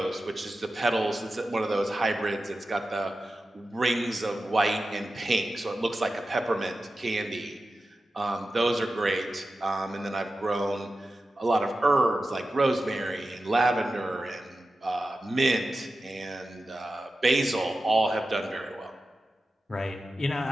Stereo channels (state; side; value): normal; both; correlation 0.93